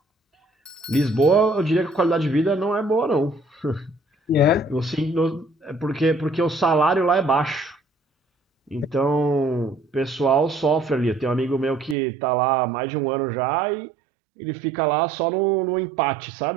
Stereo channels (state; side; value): drops out; left; at 12.0 s